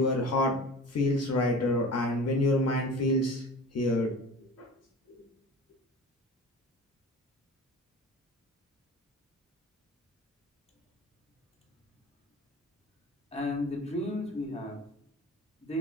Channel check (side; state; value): both; normal; correlation 0.38